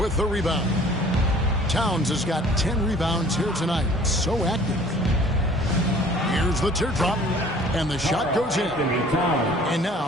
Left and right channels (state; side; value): normal; both; correlation 0.51